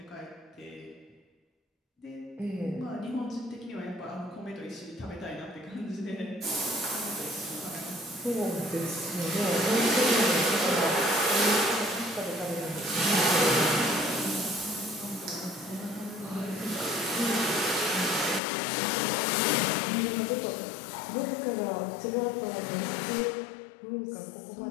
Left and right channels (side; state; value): right; drops out; at 18.4 s